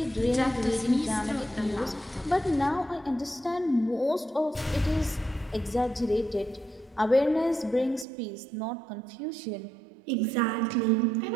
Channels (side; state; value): left; drops out; at 8.1 s